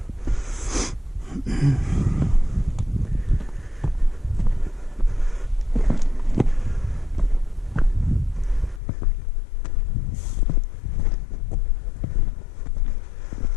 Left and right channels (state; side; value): drops out; right; at 8.8 s